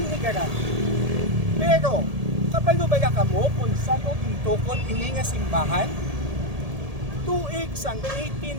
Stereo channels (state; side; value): late; left; 1.7 ms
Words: Pero kabalo ba kamo kung saan o gintukod ini nga simbahan? Tuig sang